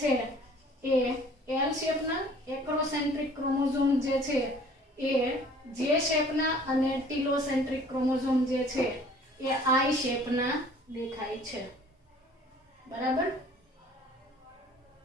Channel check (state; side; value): normal; both; correlation 0.52